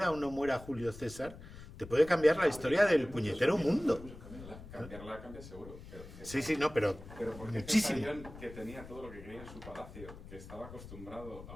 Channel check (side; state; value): left; noise; rumble, 15 dB below the sound